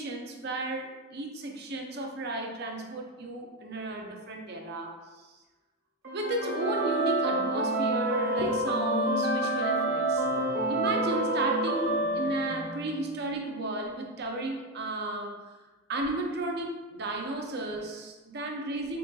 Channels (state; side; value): normal; both; correlation 0.10